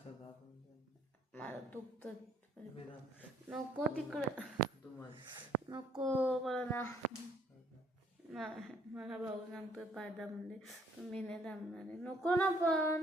मला दुखतं. नको तिकडं, नको मला ना, मला भाऊ सांगतोय पायदा म्हणजे तुम्ही नाही थांबणार आहे. नको ना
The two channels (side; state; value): both; normal; correlation 0.64